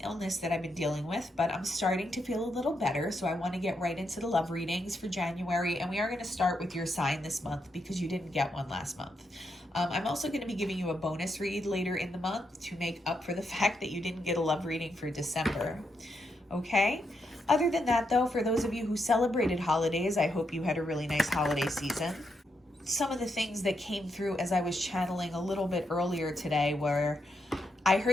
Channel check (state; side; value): normal; both; correlation 0.81